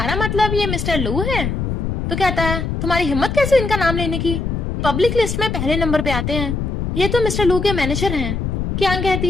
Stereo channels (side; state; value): left; noise; rumble, 2 dB below the sound